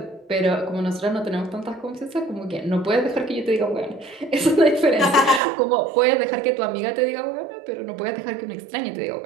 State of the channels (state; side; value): drops out; left; at 5.4 s